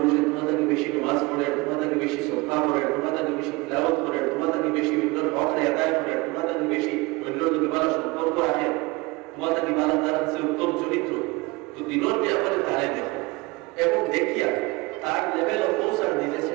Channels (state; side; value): quieter; left; 23.7 dB